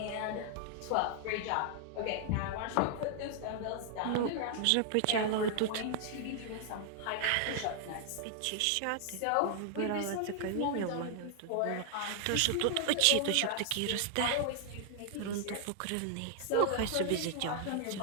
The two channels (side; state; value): both; different; correlation 0.00